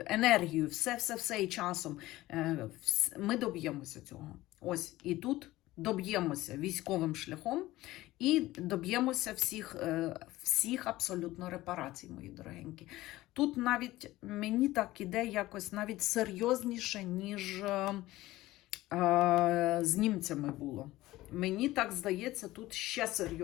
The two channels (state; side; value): quieter; right; 17.2 dB